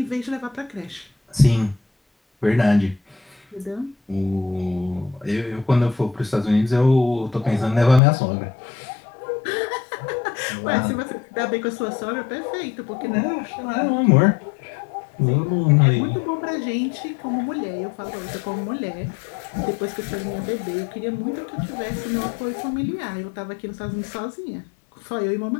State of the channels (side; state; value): right; drops out; at 8.0 s